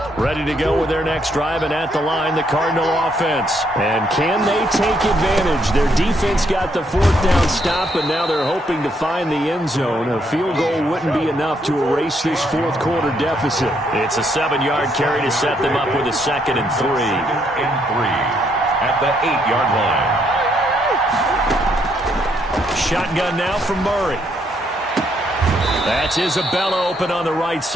Ready to go with their next drive, and at the line, the Cardinal offense. And can they take advantage? Their defense got the 4th down stop, and now they're hoping to find the end zone. A field goal wouldn't be enough to erase this 4th quarter deficit. It's a 7-yard carry to set them up with a 2nd and 3. 2nd and 3 at the 8-yard line. Shotgun now from Murray. That's Isabella open on the right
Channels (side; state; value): both; normal; correlation 0.73